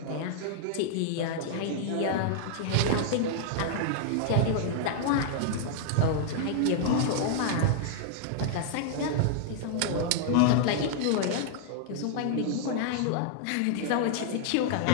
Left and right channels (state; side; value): different; both; correlation -0.01